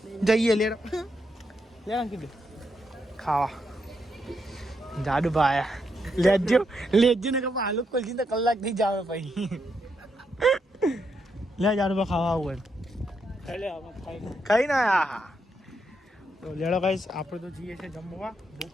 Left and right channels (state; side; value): normal; both; correlation 0.80